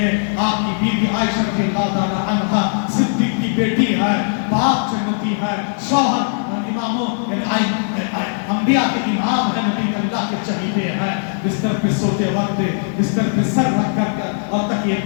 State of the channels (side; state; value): right; silent; digital silence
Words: آپ کی بیوی عائشہ رضی اللہ تعالی عنہا، صدیق کی بیٹی ہے، باپ جنتی ہے، شوہر اماموں انبیاء کے امام ہے، نبی اللہ کے چہیتے ہیں. بستر پہ سوتے وقت بستر پہ سر رکھ کر اور تکیے